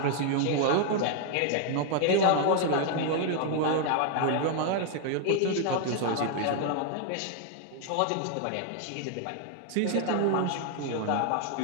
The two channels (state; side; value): different; both; correlation 0.00